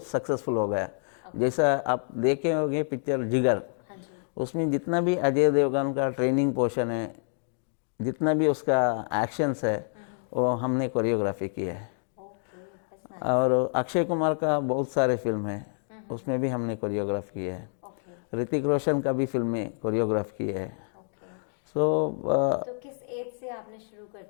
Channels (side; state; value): right; silent; digital silence